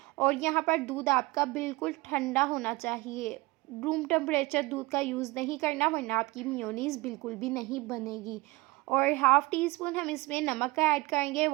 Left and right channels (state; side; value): quieter; left; 22.2 dB